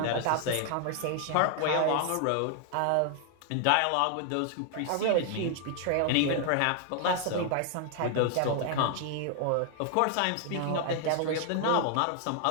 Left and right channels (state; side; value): different; both; correlation 0.00